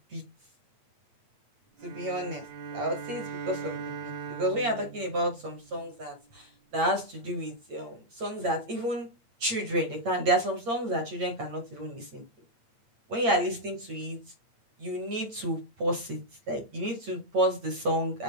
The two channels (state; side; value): late; left; 8.7 ms